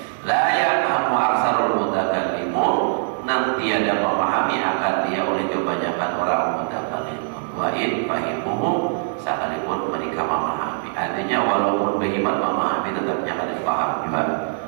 La ya'lamu aksarul mutakallimun, nanti ada memahami akan dia oleh kebanyakan orang mutakallim. Wa in fahimuhu, sekalipun mereka memahami. Artinya walaupun bagaimana memahami tetap jangan paham juga.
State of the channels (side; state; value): left; silent; 64 dB below the other